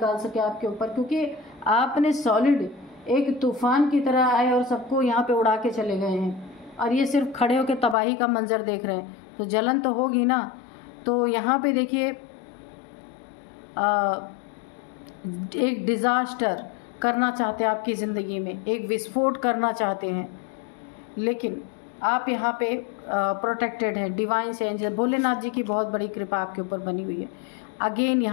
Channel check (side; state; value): right; drops out; at 8.0 s